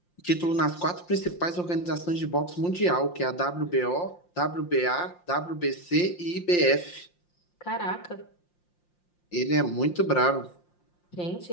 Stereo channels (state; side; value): late; right; 5.7 ms